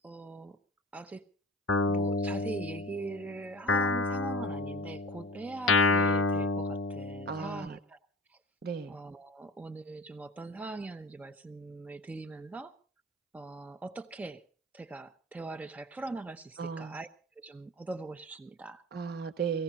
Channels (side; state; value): both; normal; correlation 0.39